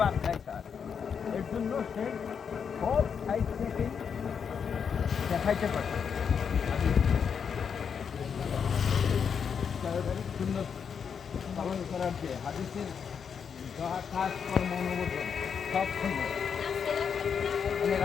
দেয় স্যার, এর জন্য সে সব সাইড থেকেই দেখাইতে পারে। সুন্দর পালন করার যে হাদিসের কাজ কর্ম অনুমোদন সব সুন্দর, মানে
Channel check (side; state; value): right; quieter; 6.9 dB